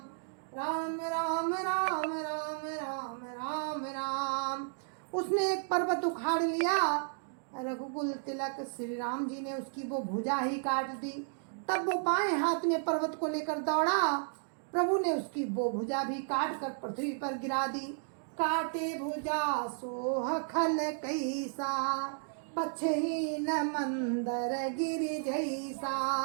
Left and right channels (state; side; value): silent; left; digital silence